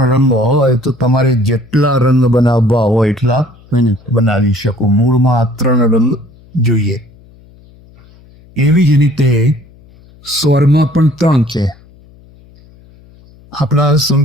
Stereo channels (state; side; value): noise; left; hum, 26 dB below the sound